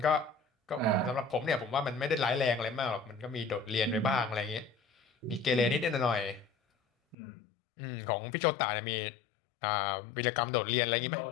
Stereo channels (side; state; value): right; drops out; at 7.2 s